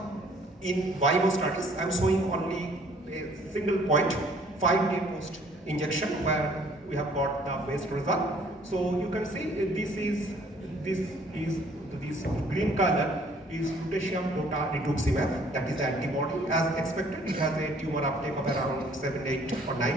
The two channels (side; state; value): both; normal; correlation 0.59